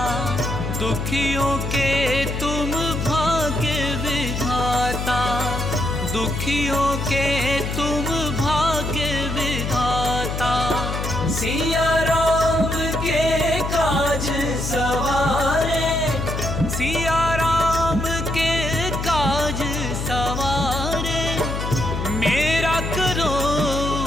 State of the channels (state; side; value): noise; left; hum, 4 dB below the sound